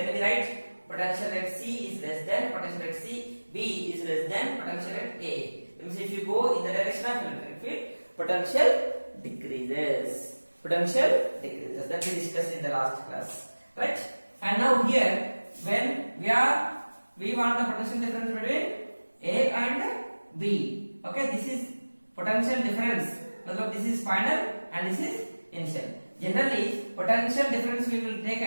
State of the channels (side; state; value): both; inverted; correlation -1.00